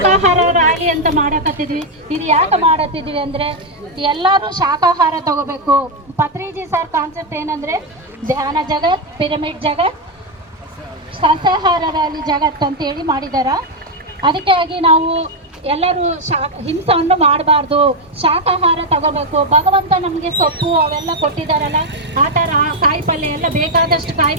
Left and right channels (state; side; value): normal; both; correlation 0.02